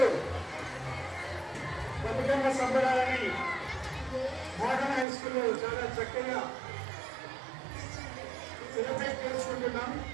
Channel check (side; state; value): left; drops out; at 5.1 s